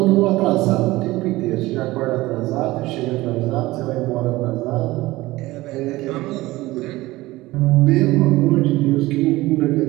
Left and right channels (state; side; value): quieter; left; 18.9 dB